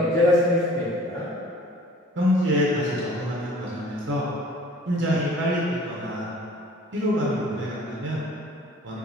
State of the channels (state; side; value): normal; both; correlation 0.50